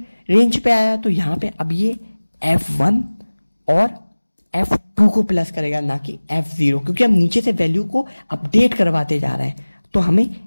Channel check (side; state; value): both; inverted; correlation -1.00